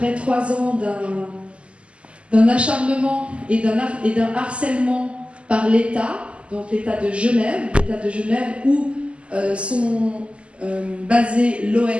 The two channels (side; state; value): left; late; 0.056 ms